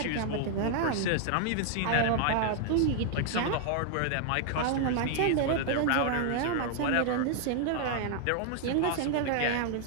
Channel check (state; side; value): different; both; correlation 0.00